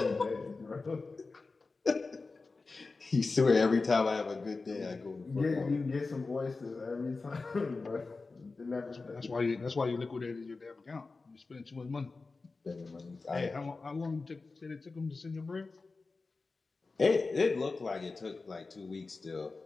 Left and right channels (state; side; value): quieter; right; 3.9 dB